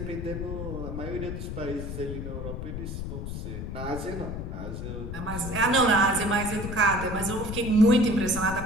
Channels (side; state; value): left; noise; rumble, 6 dB below the sound